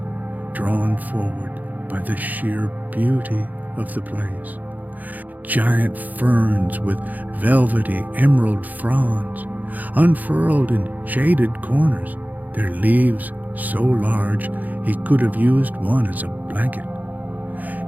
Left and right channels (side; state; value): left; late; 0.081 ms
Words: drawn forward by the sheer beauty of the place. Giant ferns with velvety emerald fronds unfurled in shaded corners, their leaves so large he could have used one as a blanket.